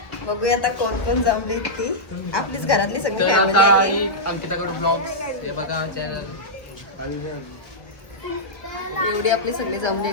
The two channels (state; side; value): late; right; 1.3 ms